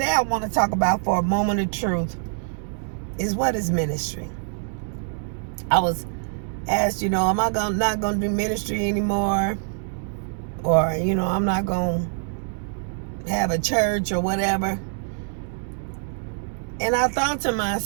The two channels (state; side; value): silent; left; 62 dB below the other